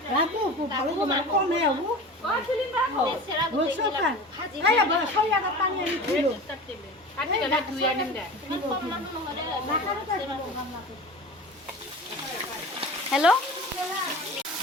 ভালো মানে কমে হবো বলছো খাই আবার খাই আর পানি আনি ছিল হেল্ল'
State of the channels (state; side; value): normal; both; correlation 0.35